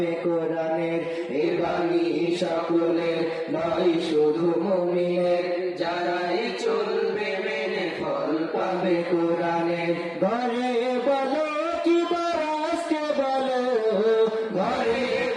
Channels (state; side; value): identical; both; correlation 1.00